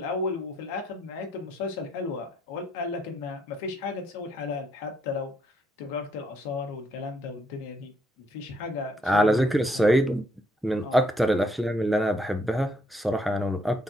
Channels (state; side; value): normal; both; correlation 0.71